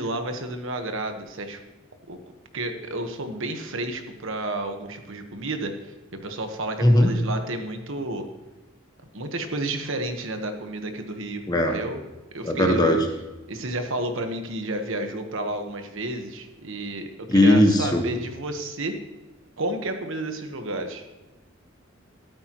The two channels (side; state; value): both; normal; correlation 0.54